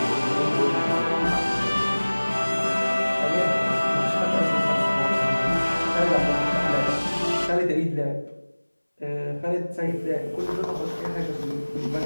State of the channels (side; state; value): both; inverted; correlation -1.00